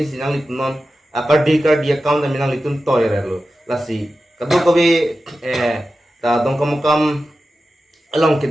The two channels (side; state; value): both; normal; correlation 0.93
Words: sinang litum non akardi account menang litum toy relo la si kado kobe ta dong kam along